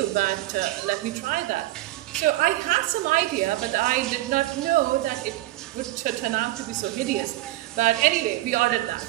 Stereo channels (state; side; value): quieter; left; 17.2 dB